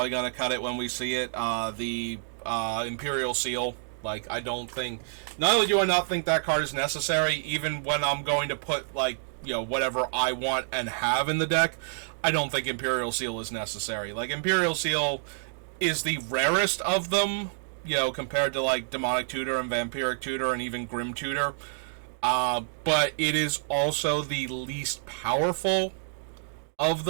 going to cut it when we see it, the Imperial Seal. Like, I don't think, not only do I not think that card is necessary, even when I'm going to put, like, you know, whatever I want and have in the deck, I don't think Imperial Seal is necessary. Like, Imperial Seal is the rarest of them, you know, compared to, like, Demonic Tutor and Vampiric Tutor and even Grim Tutor. But it is also the least powerful of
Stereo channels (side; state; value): left; silent; digital silence